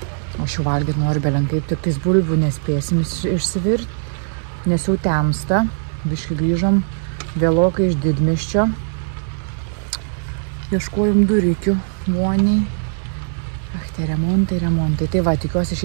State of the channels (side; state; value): left; silent; digital silence